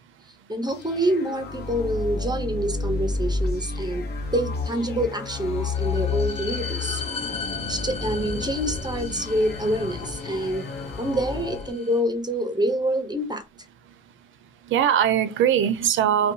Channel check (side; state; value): both; normal; correlation 0.43